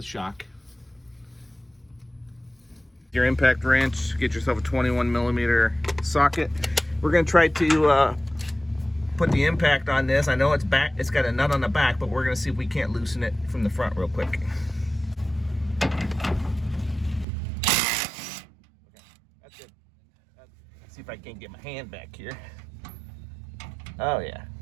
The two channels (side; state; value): left; drops out; at 17.2 s